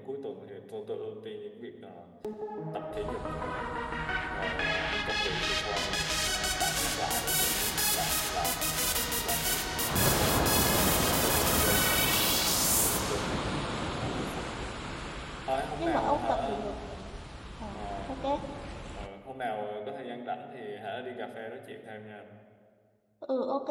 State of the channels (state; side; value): identical; both; correlation 1.00